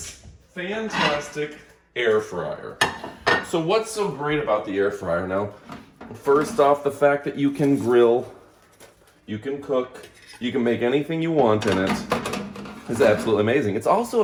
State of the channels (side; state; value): both; identical; correlation 1.00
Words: fantastic air fryer. So what's so great about the air fryer? Now, first off, the fact that you can grill, you can cook, you can make anything you want in it is absolutely amazing. It's also